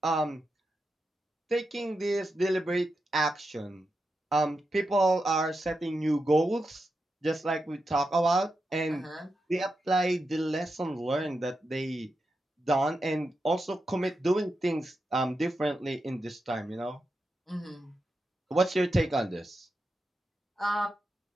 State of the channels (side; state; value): both; normal; correlation 0.88